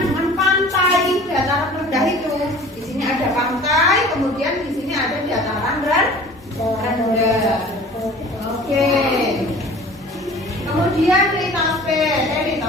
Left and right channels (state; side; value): normal; both; correlation 0.45